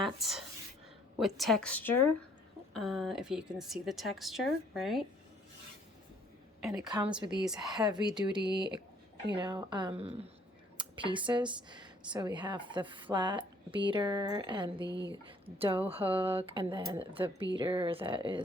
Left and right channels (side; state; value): both; normal; correlation 0.62